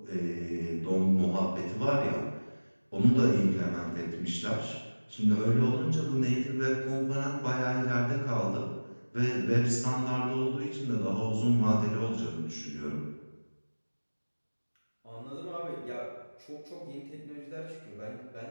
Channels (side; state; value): both; inverted; correlation -1.00